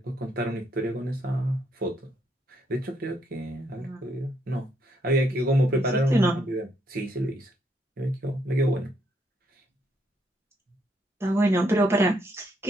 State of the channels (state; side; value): normal; both; correlation 0.73